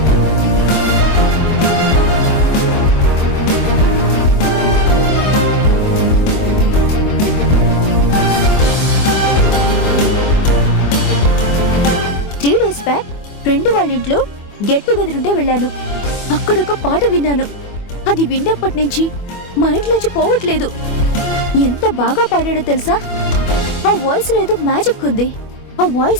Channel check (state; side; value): late; right; 24 ms